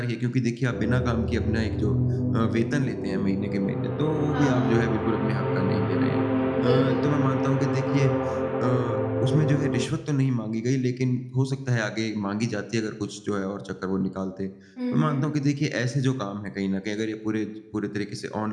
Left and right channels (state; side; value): identical; both; correlation 1.00